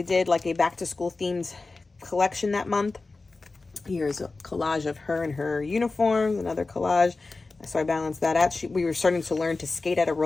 did like a back to school themed collection that month. Here's a collage of her and her uniforms. Another collage. So I balanced that out. We were starting to learn to skate at a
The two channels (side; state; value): right; quieter; 3.7 dB